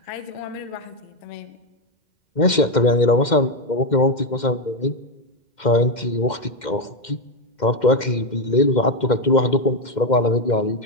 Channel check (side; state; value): right; late; 2.1 ms